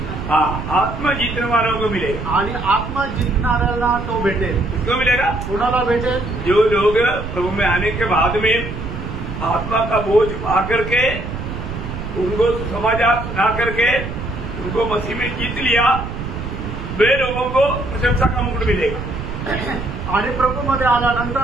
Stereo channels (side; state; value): right; noise; rumble, 7 dB below the sound